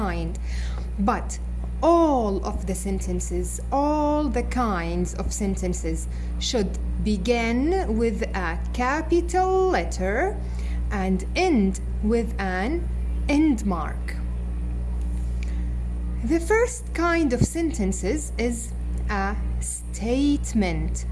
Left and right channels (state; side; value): identical; both; correlation 1.00